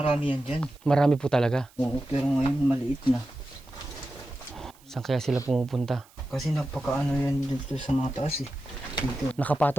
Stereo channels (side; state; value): right; noise; hiss, 28 dB below the sound